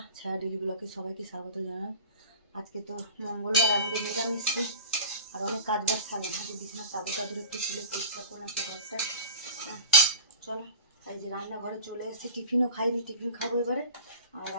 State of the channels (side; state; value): both; inverted; correlation -0.35